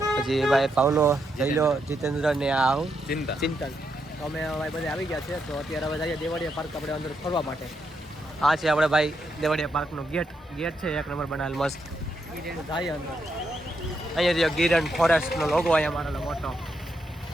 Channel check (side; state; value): both; normal; correlation 0.81